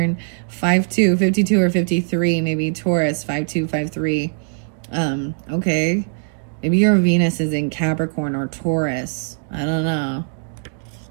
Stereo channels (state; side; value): silent; left; 65 dB below the other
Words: 5-2, 52 or 53. Maybe Taurus. 5-2, 5-3. Okay. Maybe your Venus is in Capricorn or Taurus. I don't know.